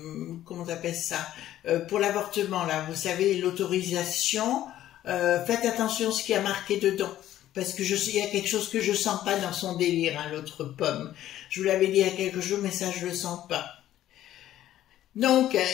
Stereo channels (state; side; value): quieter; right; 12.9 dB